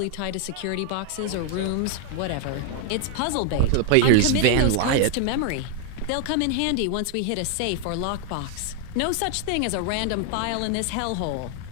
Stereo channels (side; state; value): both; different; correlation 0.00